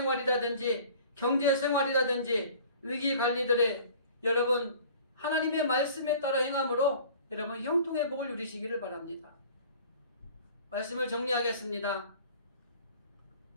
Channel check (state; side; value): inverted; both; correlation -0.47